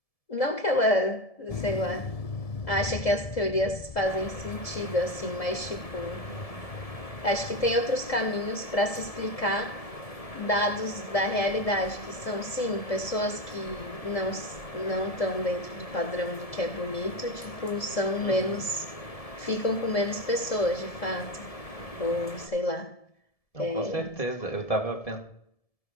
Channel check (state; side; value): late; right; 1.7 ms